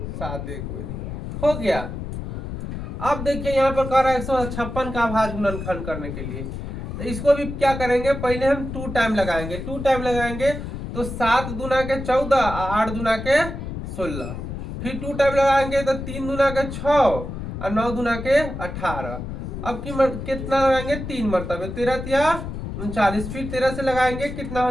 7 एक बारी हो गया। अब देखिए यहाँ पर कह रहा है 156 का अभाज्य गुणनखंड करने के लिए, तो इसको भी क्या करेंगे, पहले हम 2 टाइम लगाएंगे। 2 टाइम लगाएंगे तो 7 दूना के 14, 8 दूना के 16। फिर 2 टाइम लगाएंगे तो 3 दूना के 6 और 9 दूना के 18। अब की कितना लगाएंगे, 3 मरतबे, 13 या 39। फिर 13 से लगाएंगे, कितना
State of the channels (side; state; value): left; noise; rumble, 7 dB below the sound